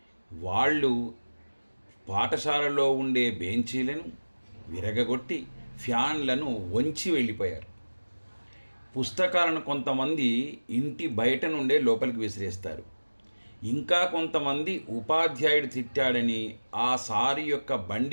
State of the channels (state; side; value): inverted; both; correlation -1.00